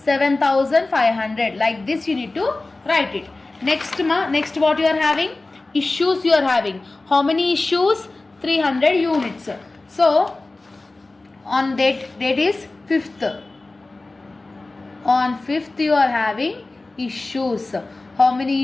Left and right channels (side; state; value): right; quieter; 3.2 dB